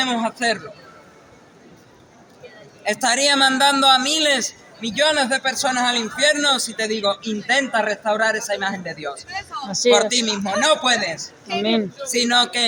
hacerlo. Estaría mandando a miles, millones de personas al infierno si te digo, intenta restaurar esa imagen de Dios. Así Por es. ti mismo. No puedes. Amén. Sino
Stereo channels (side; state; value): both; identical; correlation 1.00